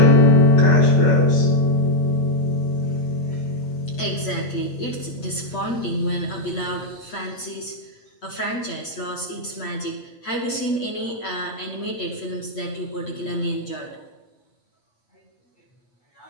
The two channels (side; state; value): right; late; 8.3 ms